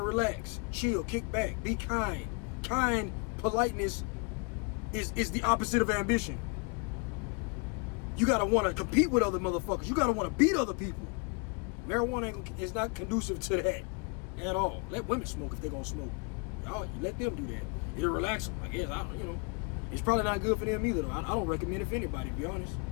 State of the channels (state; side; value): quieter; right; 32.4 dB